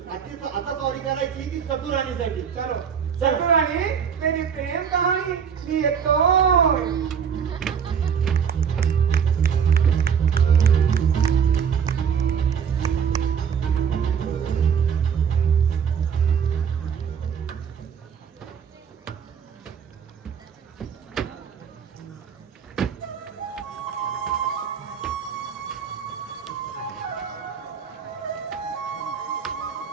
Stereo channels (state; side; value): quieter; left; 7.2 dB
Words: आता सॉरी करायची ती सपुराणीसाठी. चलो सपुराणी, मेरी प्रेम कहानी मी येतो.